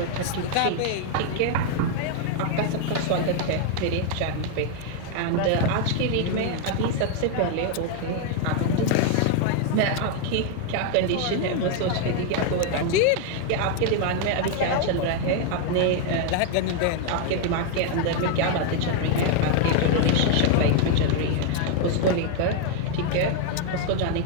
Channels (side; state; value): both; different; correlation 0.00